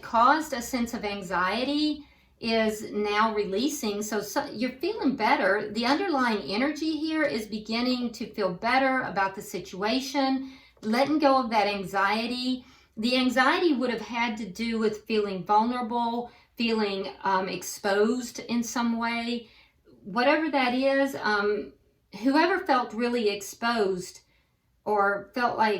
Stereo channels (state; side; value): identical; both; correlation 1.00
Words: caused a sense of anxiety is now releasing. So you're feeling better. The underlying energy here is beginning to feel better about the situation, letting go of that anxiety. The anxiety would have had to do with feeling vulnerable, feeling exposed in some way. Whatever that is, whoever felt really exposed or felt